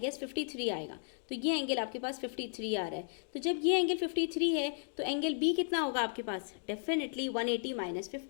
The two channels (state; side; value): silent; right; digital silence